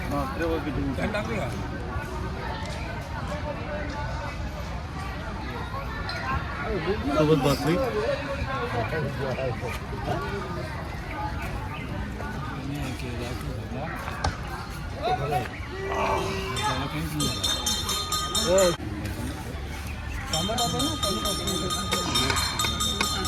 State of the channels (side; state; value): both; identical; correlation 1.00